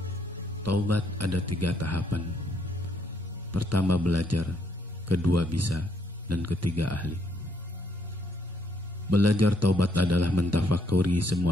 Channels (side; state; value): both; normal; correlation 0.72